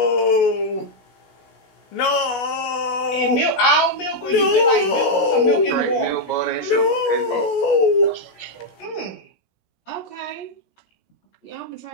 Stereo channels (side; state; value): right; late; 16 ms